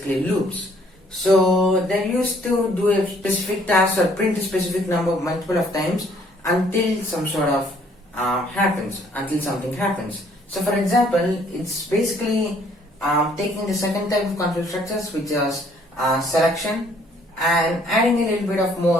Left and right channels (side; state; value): both; normal; correlation 0.62